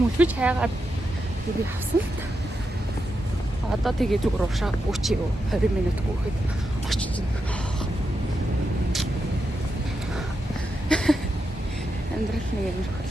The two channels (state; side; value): normal; both; correlation 0.86